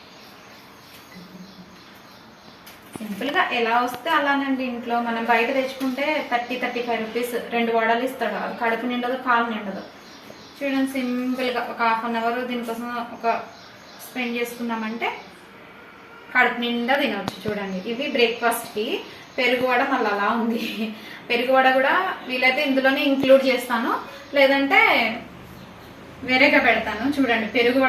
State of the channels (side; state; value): both; identical; correlation 1.00